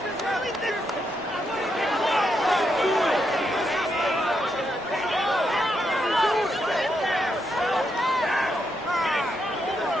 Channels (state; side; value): normal; both; correlation 0.81